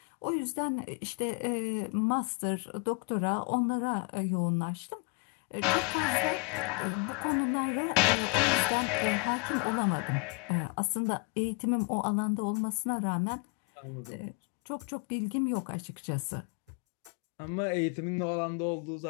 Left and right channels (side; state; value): right; quieter; 32.1 dB